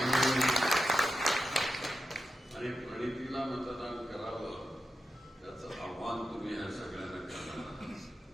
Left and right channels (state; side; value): normal; both; correlation 0.89